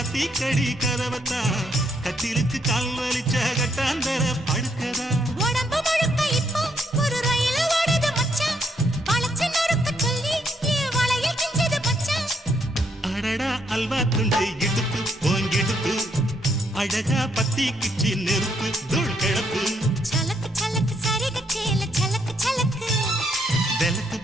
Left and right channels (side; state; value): both; normal; correlation 0.74